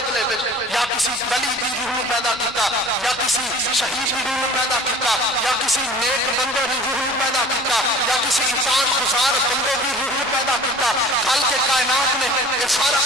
میں یا کسی ولی کی روح پیدا کیتا، یا کسی شہید کی روح پیدا کیتا، یا کسی نیک بندے کی روح پیدا کیتا، یا کسی اطاعت گزار بندے کی روح پیدا کیتا۔ خالق کائنات نے یہ سارا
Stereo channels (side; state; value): left; noise; rumble, 23 dB below the sound